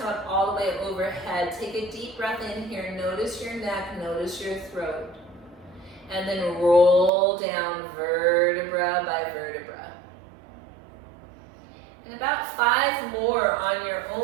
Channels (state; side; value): drops out; left; at 7.1 s